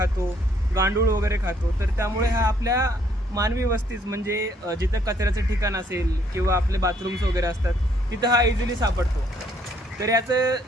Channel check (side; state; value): both; normal; correlation 0.66